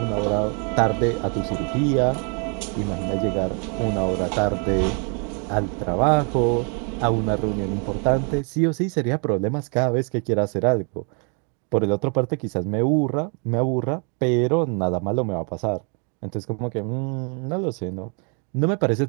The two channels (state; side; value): quieter; left; 39.3 dB